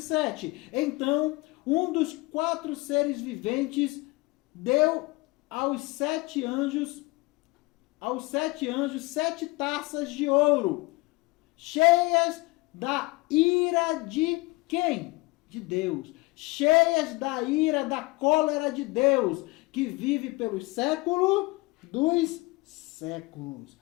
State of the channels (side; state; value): right; quieter; 23.3 dB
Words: Então, um dos 4 seres viventes deu aos 7 anjos 7 taças de ouro, cheias da ira de quem? De Deus. Cheias da ira, da cólera de Deus, que vive pelos séculos dos séculos.